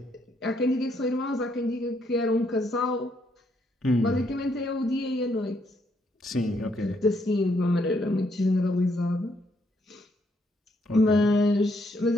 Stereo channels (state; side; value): normal; both; correlation 0.73